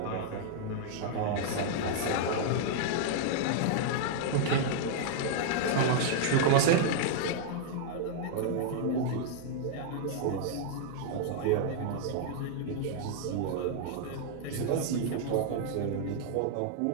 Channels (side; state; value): both; different; correlation -0.01